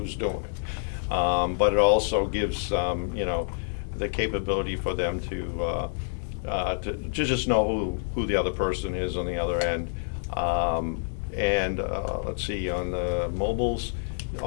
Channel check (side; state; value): right; silent; 60 dB below the other